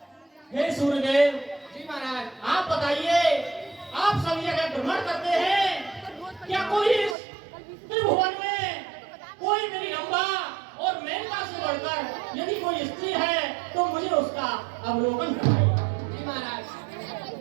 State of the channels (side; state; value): left; drops out; at 7.2 s